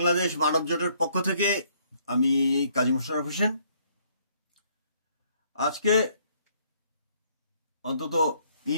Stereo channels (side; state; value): both; inverted; correlation -0.65